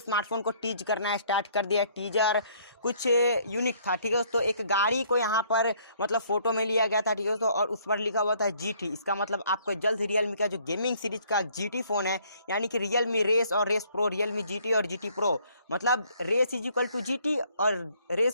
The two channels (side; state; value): both; inverted; correlation -0.62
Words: को टीज करना स्टार्ट कर दिया। टीजर कुछ यूनिक था। ठीक है दोस्तों, एक गाड़ी को यहाँ पर मतलब फोटो में लिया गया था। ठीक है दोस्तों, और उस पर लिखा हुआ था GT। इसका मतलब आपको जल्द रियलमी का जो गेमिंग सीरीज का GT फोन है, यानी कि रियलमी रेस और रेस प्रो, रियलमी GT और GT प्रो, मतलब race is equal to GT और